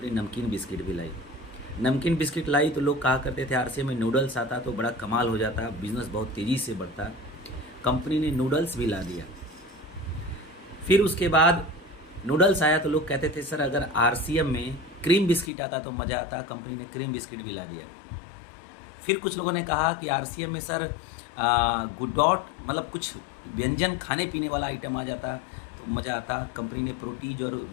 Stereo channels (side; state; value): right; drops out; at 15.5 s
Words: नमकीन बिस्किट भी लाई, नमकीन बिस्किट लाई तो लोग कहा करते थे आरसीएम में नूडल्स आता तो बड़ा कमाल हो जाता, बिज़नेस बहुत तेज़ी से बढ़ता। कंपनी ने नूडल्स भी ला दिया। फिर उसके बाद नूडल्स आया तो लोग कहते थे सर अगर आरसीएम में क्रीम बिस्किट आता तो मज़ा आता, कंपनी ने क्रीम बिस्किट भी ला दिया। फिर कुछ लोगों ने कहा कि आरसीएम में सर गुडॉट मतलब कुछ व्यंजन खाने पीने वाला आइटम आ जाता तो मज़ा आता, कंपनी ने प्रोटीज और